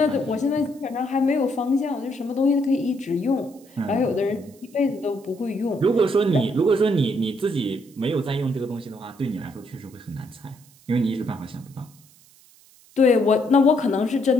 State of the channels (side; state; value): right; noise; hiss, 27 dB below the sound